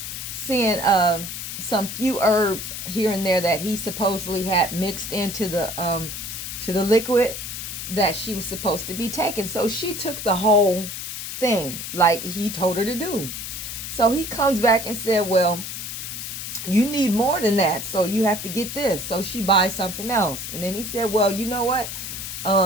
seeing some few herbs here and there that he supposedly had mixed into the liquid that she was supposed to be taking. So she took the whole thing like he told her to do. So he comes back and said, well, you need more than that, so you have to get this. So she buys something else. And then he said, well, you know what?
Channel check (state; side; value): noise; left; hiss, 7 dB below the sound